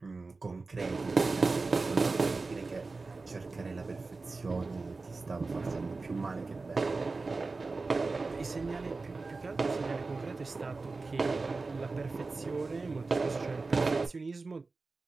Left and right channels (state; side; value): quieter; left; 3.8 dB